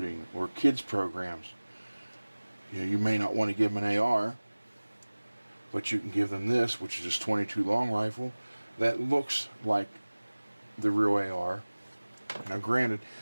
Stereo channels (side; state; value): both; inverted; correlation -1.00